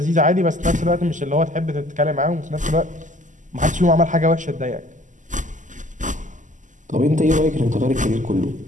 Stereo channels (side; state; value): left; late; 0.37 ms